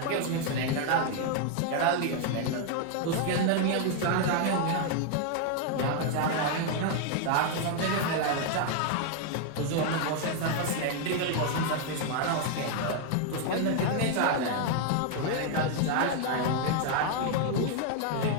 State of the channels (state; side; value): different; both; correlation 0.00